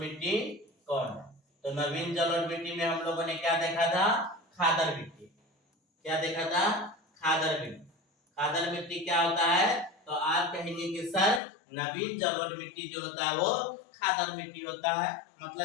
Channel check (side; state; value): right; drops out; at 11.4 s